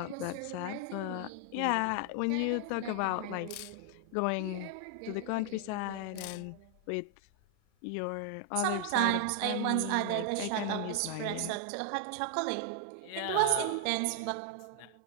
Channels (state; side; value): different; both; correlation 0.00